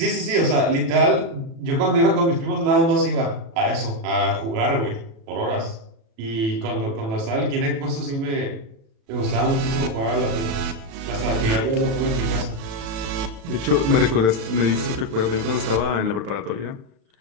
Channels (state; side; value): late; left; 36 ms